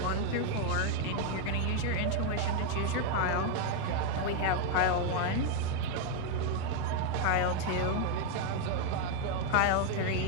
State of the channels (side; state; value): both; different; correlation 0.01